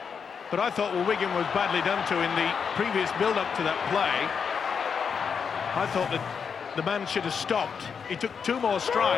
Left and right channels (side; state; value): right; quieter; 6.4 dB